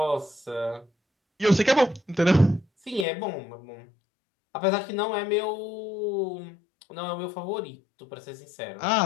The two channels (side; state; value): right; drops out; at 3.1 s